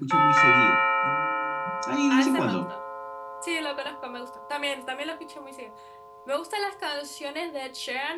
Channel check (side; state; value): both; identical; correlation 1.00